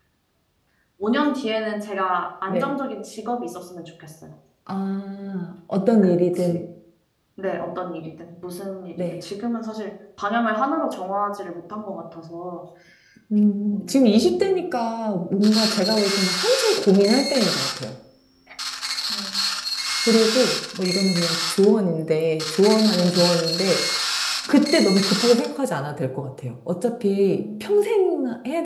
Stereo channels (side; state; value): both; identical; correlation 1.00